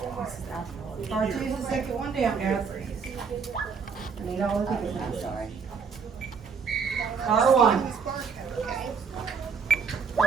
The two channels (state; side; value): quieter; left; 5.8 dB